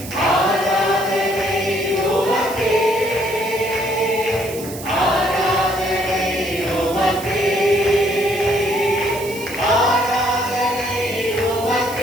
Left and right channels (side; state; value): right; noise; hiss, 13 dB below the sound